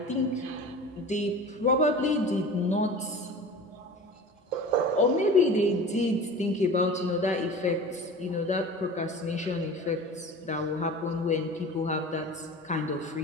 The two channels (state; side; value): normal; both; correlation 0.37